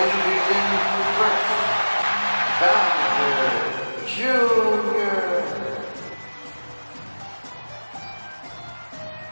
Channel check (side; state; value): both; inverted; correlation -1.00